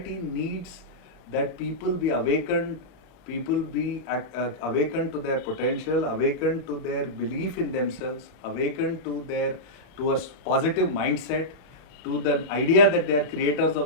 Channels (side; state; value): right; late; 38 ms